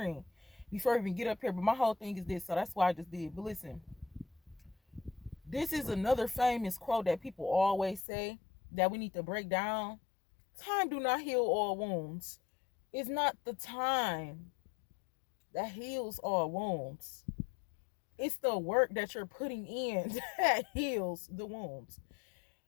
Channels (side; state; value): right; drops out; at 8.1 s